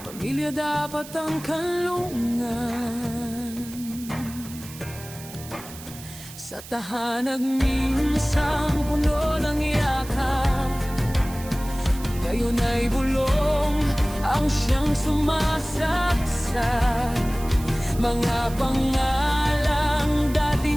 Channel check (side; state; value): right; noise; hiss, 16 dB below the sound